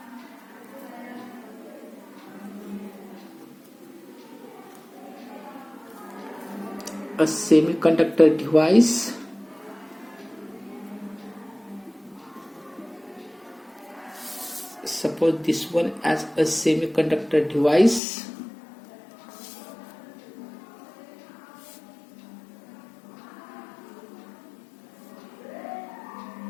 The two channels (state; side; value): drops out; right; at 18.0 s